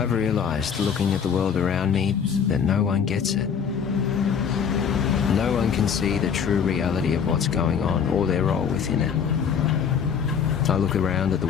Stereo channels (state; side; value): quieter; right; 7.1 dB